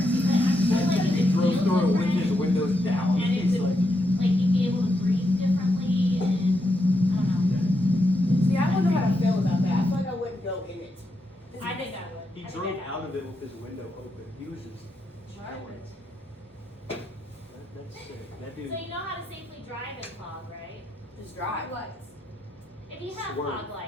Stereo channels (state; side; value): normal; both; correlation 0.82